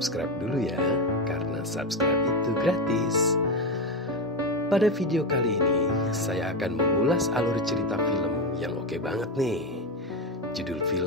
dulu ya, karena subscribe itu gratis. Pada video kali ini, saya akan mengulas alur cerita film yang oke banget nih. Judul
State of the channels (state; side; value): normal; both; correlation 0.13